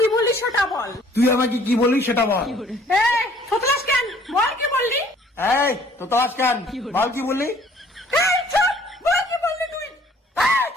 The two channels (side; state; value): both; normal; correlation 0.58